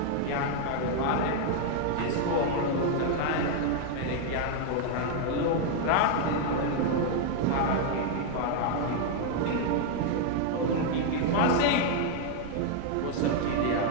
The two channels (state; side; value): different; both; correlation 0.00